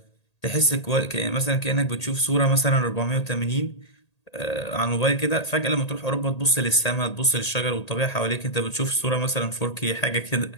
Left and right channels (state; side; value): late; right; 1.8 ms